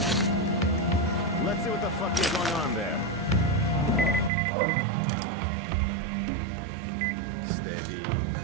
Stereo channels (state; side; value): drops out; left; at 4.3 s